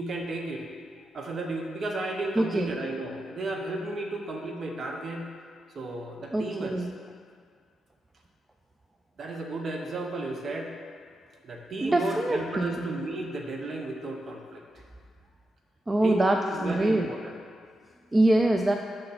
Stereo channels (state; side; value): normal; both; correlation 0.89